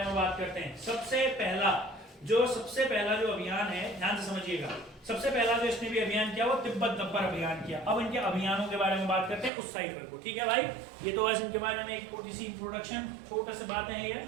में बात करते हैं। सबसे पहला जो अभियान है, ध्यान से समझिएगा, सबसे पहला जो इसने भी अभियान किया वो तिब्बत गब्बर अभियान किया। अब इनके अभियानों के बारे में बात करते हैं उस साइड पर, ठीक है भाई। ये तो बस इनके बारे में एक थोड़ी सी इंट्रोडक्शन, छोटा सा बात है ये।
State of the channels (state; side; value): drops out; left; at 9.5 s